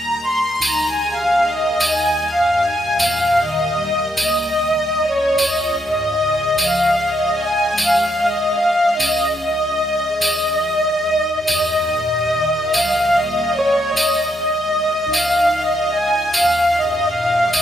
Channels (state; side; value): normal; both; correlation 0.78